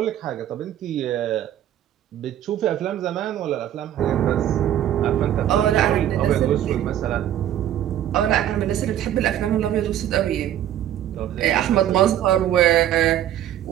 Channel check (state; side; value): quieter; left; 11.5 dB